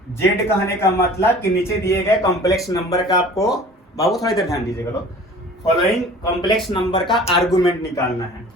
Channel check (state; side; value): normal; both; correlation 0.45